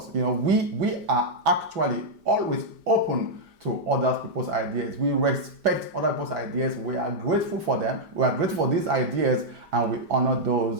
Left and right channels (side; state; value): left; late; 5.0 ms